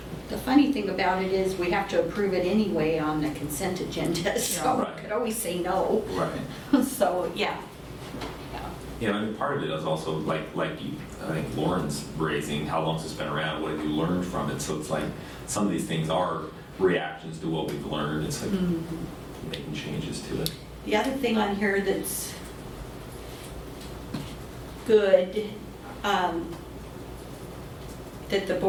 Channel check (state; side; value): identical; both; correlation 1.00